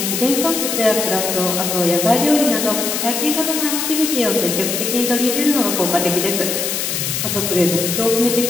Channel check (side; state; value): left; noise; hiss, 1 dB below the sound